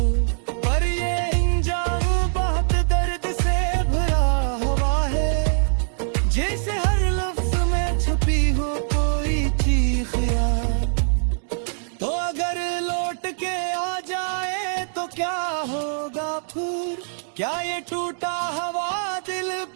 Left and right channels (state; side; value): silent; left; digital silence